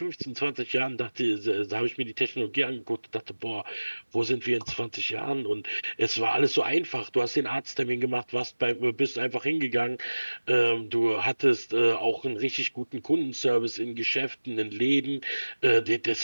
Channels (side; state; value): both; inverted; correlation -1.00